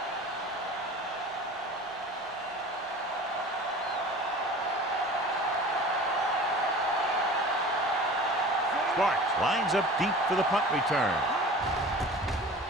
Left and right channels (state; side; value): normal; both; correlation 0.40